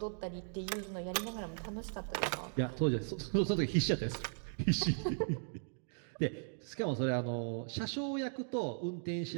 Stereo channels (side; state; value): left; silent; digital silence